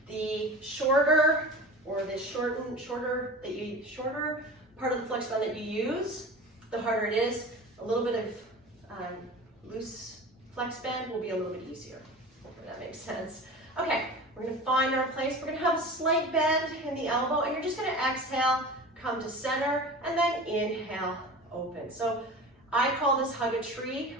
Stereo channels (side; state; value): both; normal; correlation 0.35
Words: The shorter or the shorter part of the flex band that you use, the harder it is. A little bit of loose flex band will be a little bit easier. Hopefully that makes sense. Okay. We're going to find our place. We're going to have a slight bend in the elbow, and you're just going to exhale, come to center, and then inhale, open. So I call this hug a tree